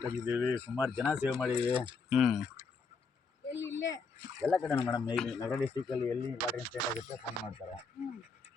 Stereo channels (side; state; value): right; quieter; 4.6 dB